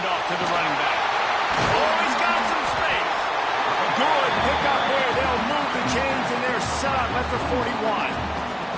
to the running back. Oh, he's got some space. Good pick up there. They'll move the chains, and they're set up at the 41.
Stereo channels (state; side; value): identical; both; correlation 1.00